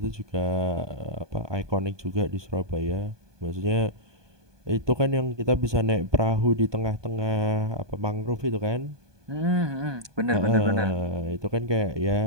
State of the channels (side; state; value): left; late; 1.2 ms